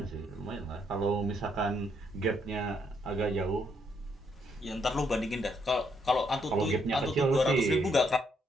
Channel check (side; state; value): both; normal; correlation 0.74